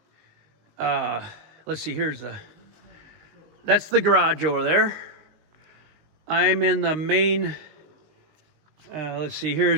let's see, that's the garage over there. I'm in the main, let's see,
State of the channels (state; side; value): late; left; 19 ms